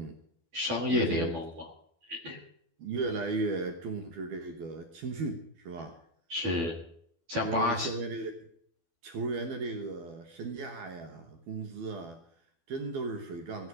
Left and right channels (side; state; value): left; late; 12 ms